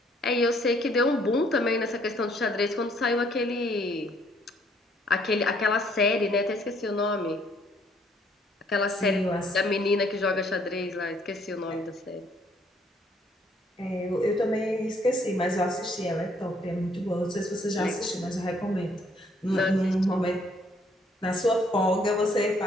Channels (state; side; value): normal; both; correlation 0.65